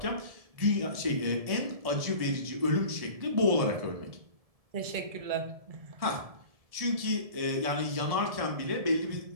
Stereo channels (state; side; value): late; left; 1.7 ms